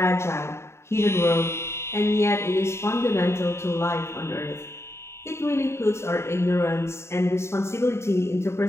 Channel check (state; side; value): late; right; 0.13 ms